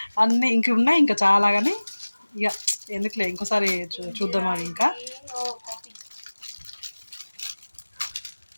అన్నీ ఇంక ఉన్నాయి ఇంకా చాలా కానీ ఇక ఎందుకులే ఇంకోసారి చూద్దాం అవి ఇంకా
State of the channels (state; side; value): inverted; both; correlation -1.00